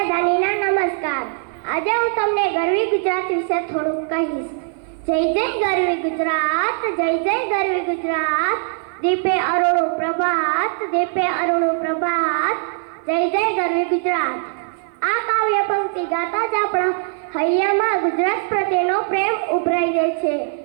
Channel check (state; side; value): silent; left; 55 dB below the other